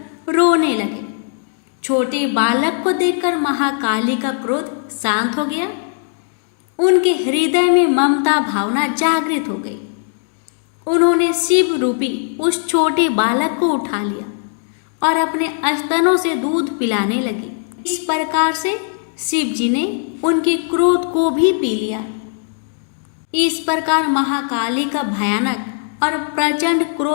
रोने लगे। छोटे बालक को देखकर महाकाली का क्रोध शांत हो गया। उनके हृदय में ममता भावना जागृत हो गई। उन्होंने शिव रूपी उस छोटे बालक को उठा लिया और अपने स्तनों से दूध पिलाने लगी। इस प्रकार से शिव जी ने उनके क्रोध को भी पी लिया। इस प्रकार महाकाली का भयानक और प्रचंड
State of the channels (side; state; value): right; silent; 62 dB below the other